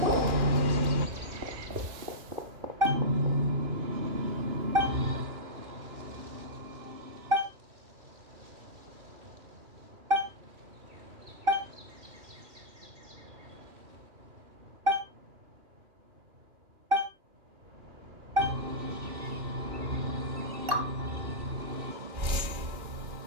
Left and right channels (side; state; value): left; late; 2.4 ms